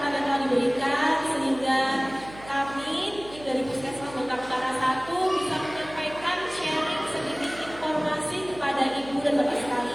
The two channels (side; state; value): right; noise; hum, 17 dB below the sound